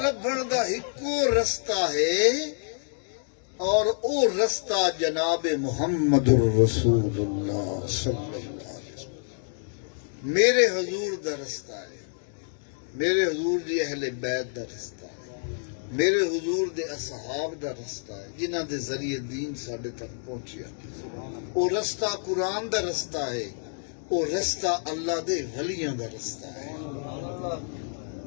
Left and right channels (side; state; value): right; silent; digital silence